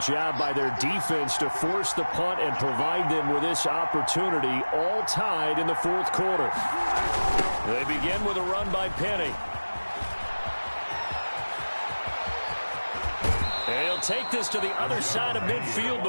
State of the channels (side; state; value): both; inverted; correlation -1.00